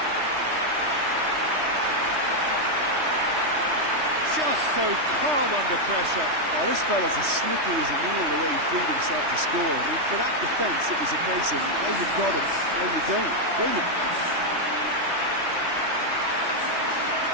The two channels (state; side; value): late; left; 3.2 ms